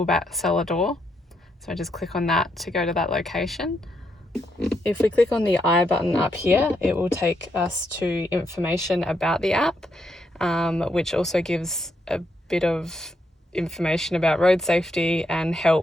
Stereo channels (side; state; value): both; normal; correlation 0.79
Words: Cellar Door. So I just click on that to go to that location. If we click on the I button up here, it will take us to information about the app, which also gives a bit of information about road safety and